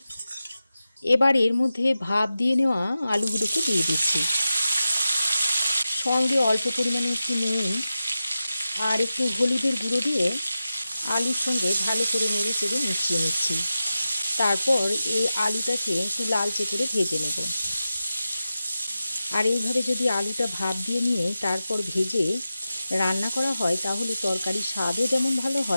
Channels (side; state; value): both; inverted; correlation -0.93